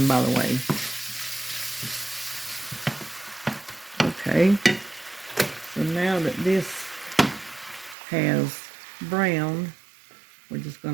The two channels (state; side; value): drops out; left; at 8.0 s